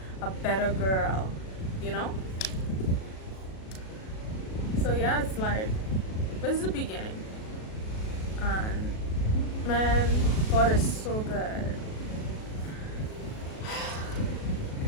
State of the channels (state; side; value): late; right; 37 ms